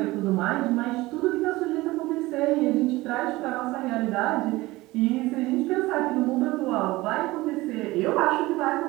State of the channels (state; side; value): quieter; left; 19.7 dB